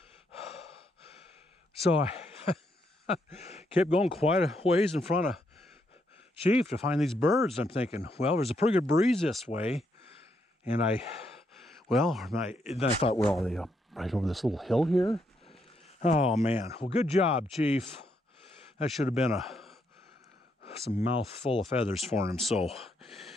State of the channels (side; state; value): both; normal; correlation 0.77